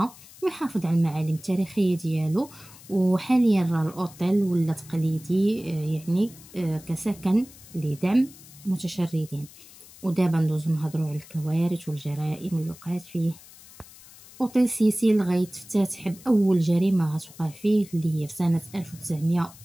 ويحافظ على المعالم التاريخية ديالو. وحاليا الأوتيل ولا تقليدي يعني كسكن لدعم متشردين. ودابا ندوزو نهضروا على الكوارث والجرائم اللي وقعت فيه. أوتيل سيسيل غيتفتتح بأول جريمة غتوقع فيه اللي هي في سنة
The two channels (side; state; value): left; noise; hiss, 21 dB below the sound